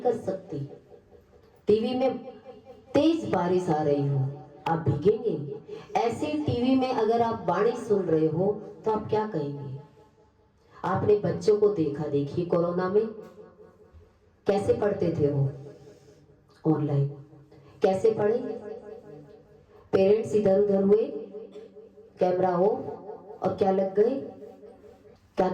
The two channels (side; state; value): both; identical; correlation 1.00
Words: सकती। टीवी में तेज बारिश आ रही हो, आप भीगेंगे। ऐसे टीवी में अगर आप वाणी सुन रहे हो तो आप क्या कहेंगे? आपने बच्चों को देखा, देखिए कोरोना में कैसे पढ़ते थे वो ऑनलाइन, कैसे पढ़े? पेरेंट्स इधर उधर हुए, कैमरा हो, और क्या लग गए? क्या